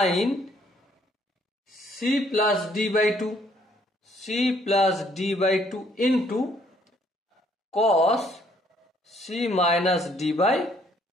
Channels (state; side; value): normal; both; correlation 0.65